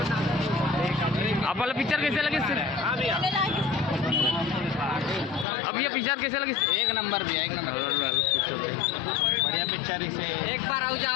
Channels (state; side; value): drops out; right; at 5.5 s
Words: आप वाला पिक्चर कैसे लगे? अब ये पिक्चर कैसे लगी? एक नंबर भी है, एक नंबर बढ़िया पिक्चर इसे एक बार आउ